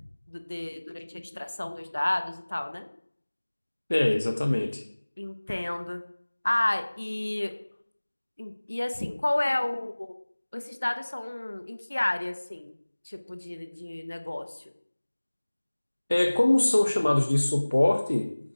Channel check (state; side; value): inverted; both; correlation -1.00